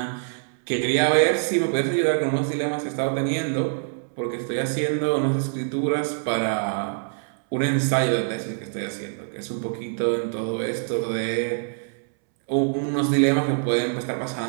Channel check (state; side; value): silent; left; 62 dB below the other